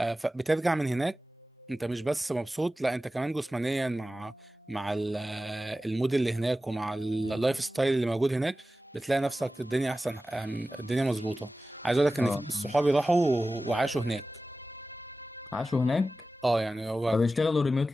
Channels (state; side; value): normal; both; correlation 0.95